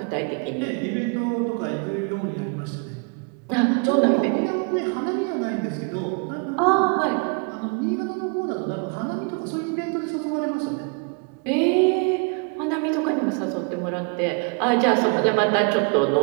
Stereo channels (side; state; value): left; quieter; 35.0 dB